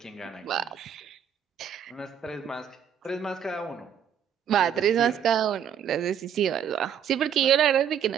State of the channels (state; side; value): quieter; left; 8.5 dB